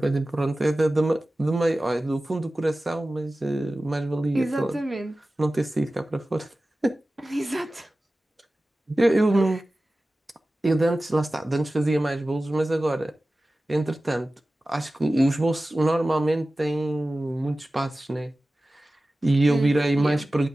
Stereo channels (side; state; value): both; normal; correlation 0.96